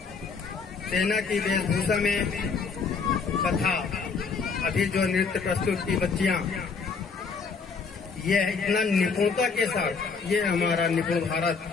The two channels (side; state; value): right; quieter; 5.1 dB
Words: सेना की वेशभूषा में तथा अभी जो नृत्य प्रस्तुत की बच्चियां, यह इतना निपुणता के साथ, ये हमारा निपुण भारत